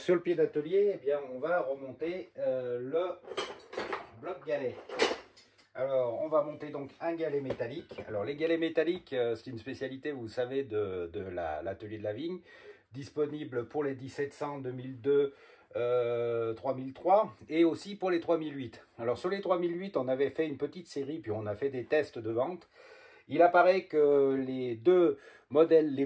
le pied d'atelier, on va remonter le bloc galet. Alors on va monter donc un galet métallique. Alors les galets métalliques, c'est une spécialité, vous savez, de l'atelier de la vigne, disponible pour les 1700, 2002, 3003 et aussi pour les 3008. Alors sur les 3008, on avait fait une petite série, puis on a fait des tests de vente. Il apparaît que les deux modèles les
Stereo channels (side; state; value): both; identical; correlation 1.00